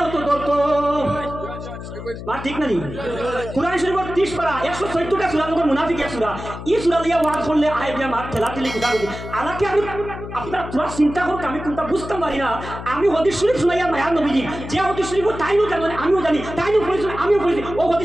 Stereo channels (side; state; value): left; noise; hum, 10 dB below the sound